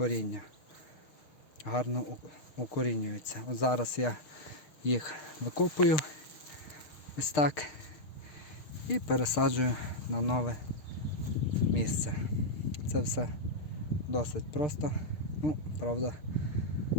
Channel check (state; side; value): late; right; 6.5 ms